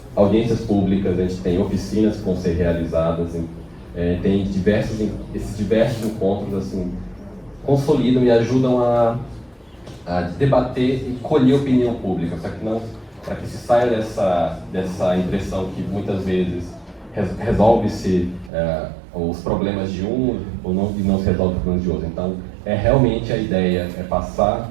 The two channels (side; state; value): left; drops out; at 18.5 s